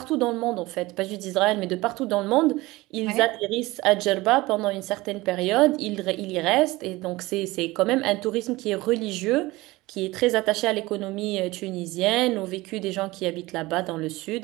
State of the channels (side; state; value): left; quieter; 20.3 dB